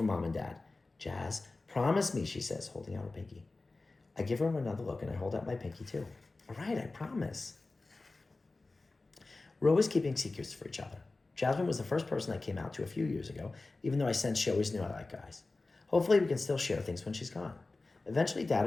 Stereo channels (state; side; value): quieter; right; 3.4 dB